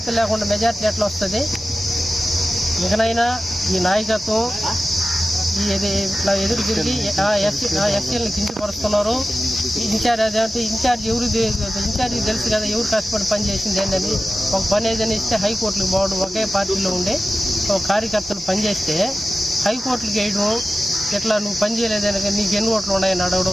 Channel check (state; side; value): normal; both; correlation 0.94